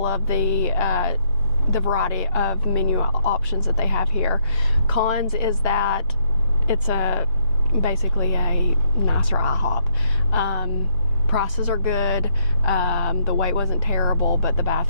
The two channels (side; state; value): both; inverted; correlation -0.71